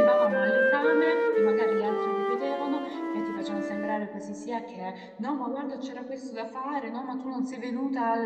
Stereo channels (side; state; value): both; identical; correlation 1.00